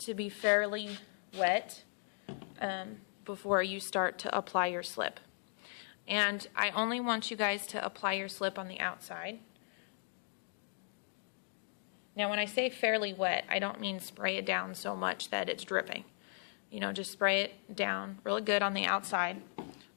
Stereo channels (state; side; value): silent; right; digital silence